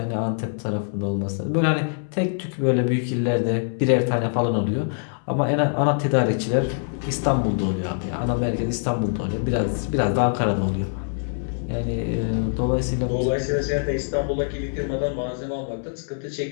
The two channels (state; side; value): silent; right; 63 dB below the other